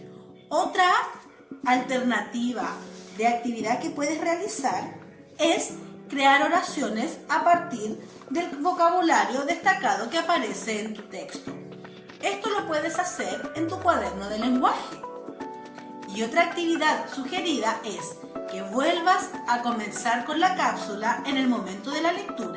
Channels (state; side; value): identical; both; correlation 1.00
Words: Otra alternativa de actividad que puedes realizar es crear oraciones a partir del vocabulario destacado que aparece en tu texto. Esto lo puedes hacer en tu cuaderno de lenguaje. Y otra actividad sugerida es que vuelvas a comenzar con la cápsula en el momento de la